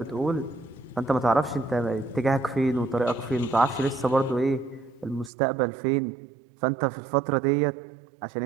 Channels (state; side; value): drops out; left; at 5.3 s